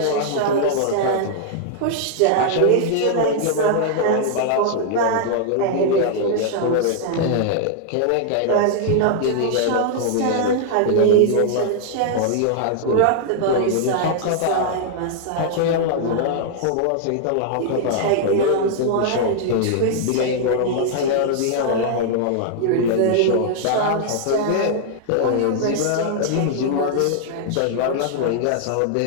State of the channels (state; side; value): different; both; correlation -0.01